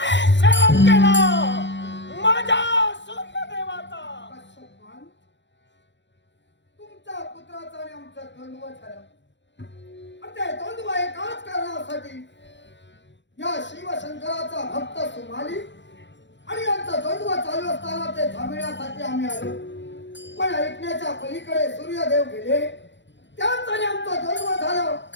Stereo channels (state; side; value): late; right; 0.52 ms